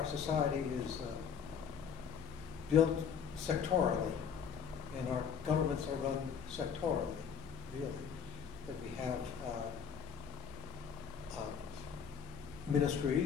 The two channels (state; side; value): quieter; right; 6.8 dB